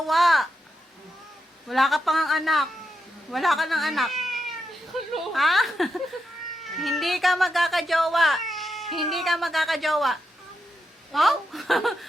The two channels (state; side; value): normal; both; correlation 0.84